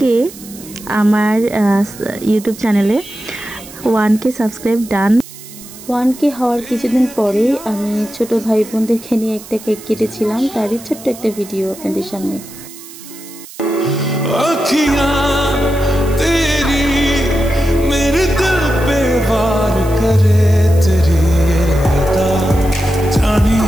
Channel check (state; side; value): noise; right; hiss, 17 dB below the sound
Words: আমার ইউটিউব চ্যানেলে 1K সাবস্ক্রাইব ডান। 1K হওয়ার কিছুদিন পরে আমি ছোট ভাই বোনদেরকে নিয়ে একটা কেক কেটেছিলাম, তারই ছোট্ট একটা ভিডিও আপনাদের সামনে।